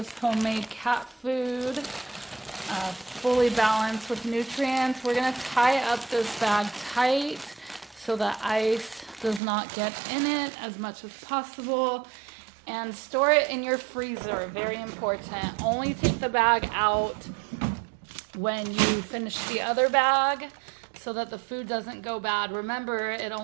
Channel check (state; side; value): drops out; left; at 9.4 s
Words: homemade cat food, fully balanced with nutrients. We're gonna tie up this bag tight so that ice does not get in it as much as possible, and store it in your freezer. Very important. Only take the bag out when you finish the other bag so that the food doesn't go bad. Remember, it